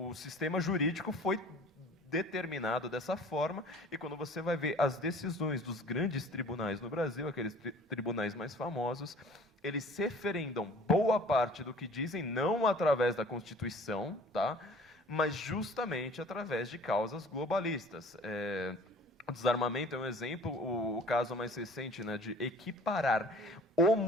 o sistema jurídico foi determinado dessa forma, e quando você vai ver as decisões dos grandes tribunais no Brasil, aqueles tribunais mais famosos, eles se referendam boa parte do que dizem, não através da Constituição, tá? Mas justamente através de causas globalistas. O desarmamento é um exemplo, o caso mais recente, né, de equiparar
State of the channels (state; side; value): normal; both; correlation 0.48